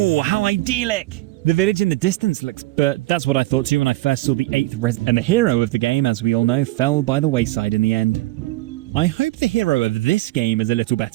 how idyllic! The village in the distance looks... But that's what I thought too when I first saw the 8th And the hero of the game, as we all know, fell by the wayside in the end. I hope the hero of this game is a little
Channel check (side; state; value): left; quieter; 18.8 dB